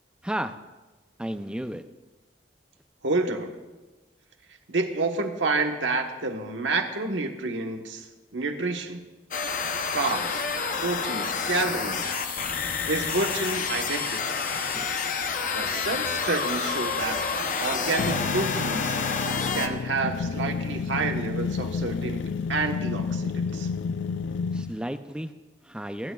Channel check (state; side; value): normal; both; correlation 0.17